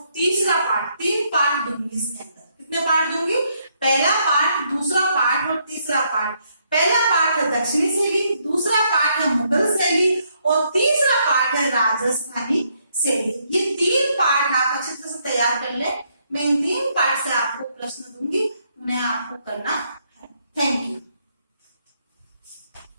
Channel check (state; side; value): inverted; both; correlation -0.73